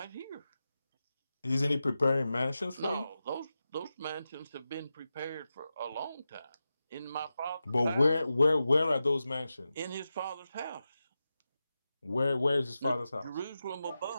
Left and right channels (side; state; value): both; inverted; correlation -0.92